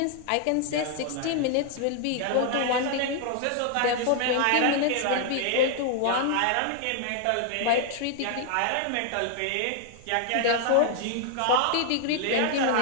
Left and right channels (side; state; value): both; different; correlation 0.00